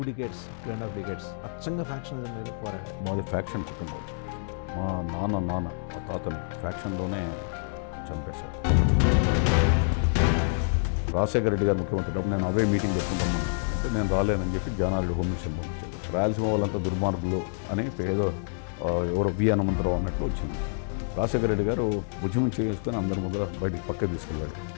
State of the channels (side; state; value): right; silent; digital silence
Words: decades అచ్చంగా ఫ్యాక్షనిజం మీద పోరాడారు. మాది ఫ్యాక్షన్ కుటుంబం. మా నాన్న మా తాతని ఫ్యాక్షన్లోనే చంపేశారు. రాజశేఖర రెడ్డి గారు ముఖ్యమంత్రి నేను అవే మీటింగ్ పెట్టుకుంటామని అంటే నేను రాలేనని చెప్పి జానారెడ్డి హోమ్ మినిస్టర్ పంపించాడు. రాయలసీమ వాళ్ళంతా దుర్మార్గులు అని ఏదో ఎవరో వి హనుమంతరావు అన్నట్లు వచ్చింది. రాజశేఖర రెడ్డి గారు ఉద్యమం చేసుకొని అందరి ముందర బయటికి పక్క తీసుకెళ్ళాడు.